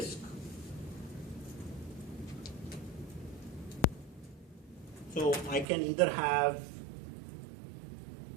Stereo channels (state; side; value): drops out; left; at 5.7 s